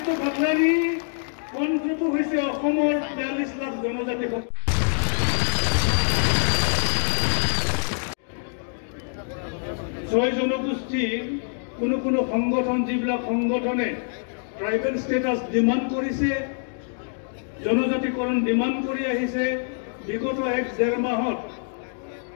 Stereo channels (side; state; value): right; silent; digital silence